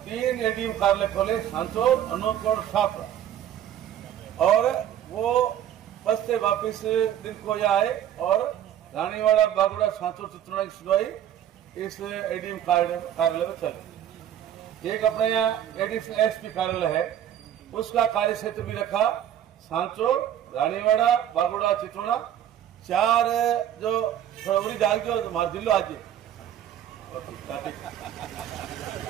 3 एडीएम कार्यालय खोले, सांचौर, अनूपगढ़, शाहपुरा, और वो बस से वापिस दिन को आए और रानीवाड़ा, बागोड़ा, सांचौर, चित्रोड़ा की सुनवाई इस एडीएम कार्यालय में चली। एक अपने यहाँ एडीएम एसपी कार्यालय है, उसका कार्य क्षेत्र भी रखा, सांचौर, रानीवाड़ा, बागोड़ा, चित्रोड़ा, 4 जो फरवरी डाल के हमारे जिलो आज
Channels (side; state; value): left; quieter; 10.7 dB